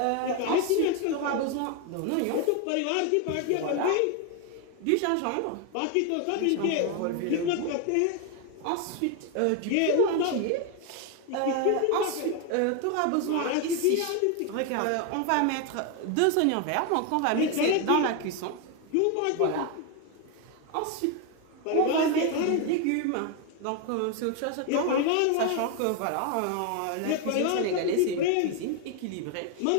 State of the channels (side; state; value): both; different; correlation 0.01